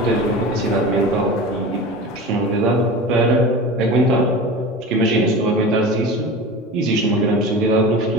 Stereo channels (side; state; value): both; normal; correlation 0.32